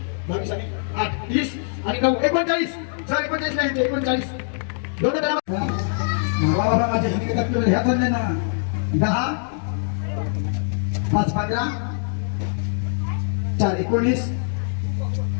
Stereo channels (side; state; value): right; silent; digital silence